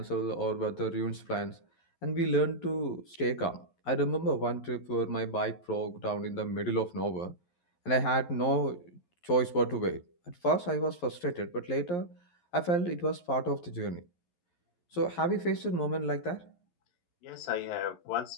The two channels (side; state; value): right; late; 11 ms